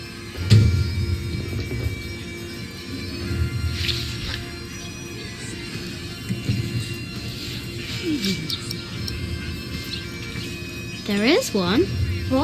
There is one.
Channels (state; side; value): identical; both; correlation 1.00